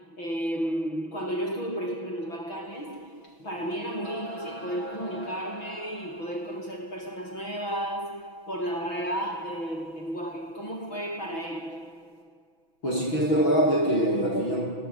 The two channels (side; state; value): right; late; 6.1 ms